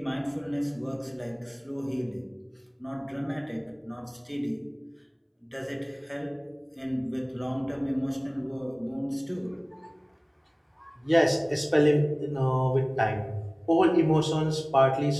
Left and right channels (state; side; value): identical; both; correlation 1.00